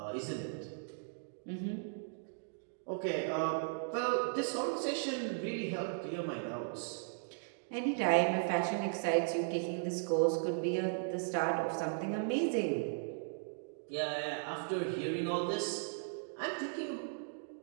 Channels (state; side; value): silent; left; digital silence